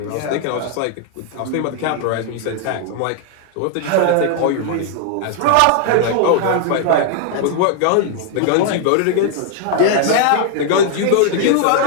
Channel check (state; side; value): different; both; correlation 0.00